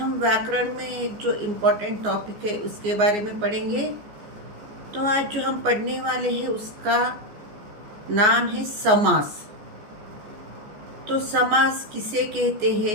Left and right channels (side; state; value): left; late; 14 ms